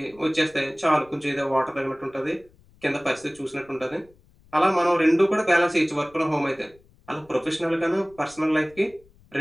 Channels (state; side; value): noise; left; rumble, 29 dB below the sound